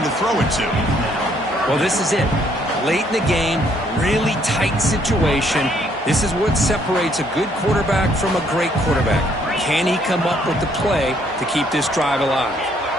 to throw it to. Well, this is it. Late in the game, really tight situation. This is what separates a good quarterback from a great quarterback. Can he come up with the play to keep this drive alive?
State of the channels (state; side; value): normal; both; correlation 0.67